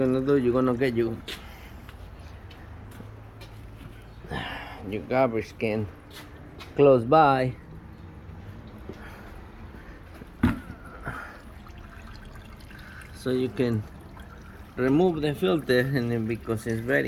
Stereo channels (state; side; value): identical; both; correlation 1.00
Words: do, you're gonna get your garbage can close by, so you can remove the filter, and then because it's